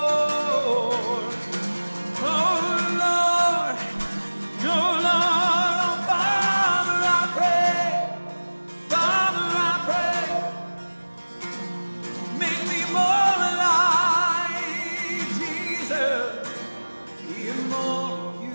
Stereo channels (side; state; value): both; inverted; correlation -1.00